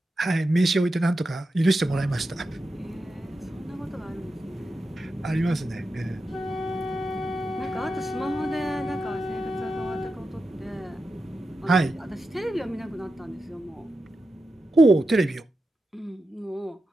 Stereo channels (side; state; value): both; normal; correlation 0.90